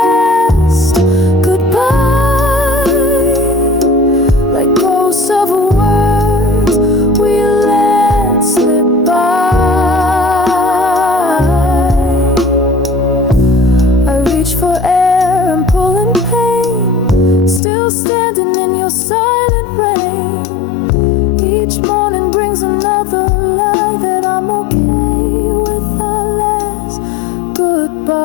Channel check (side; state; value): right; drops out; at 17.6 s